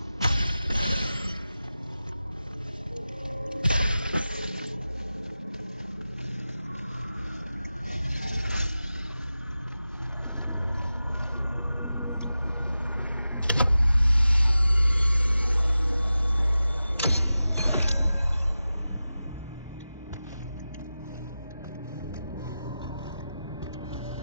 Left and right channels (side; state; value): both; inverted; correlation -0.94